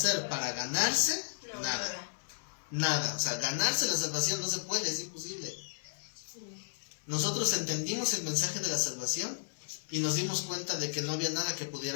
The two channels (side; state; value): right; silent; 55 dB below the other